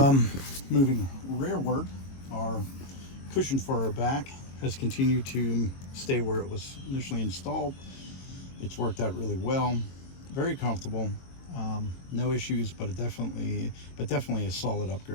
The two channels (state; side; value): late; right; 22 ms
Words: Moving rearward, our cushion for our back has continued to stay where it was initially installed. It's worked out really well. Very comfortable. No issues, but definitely a solid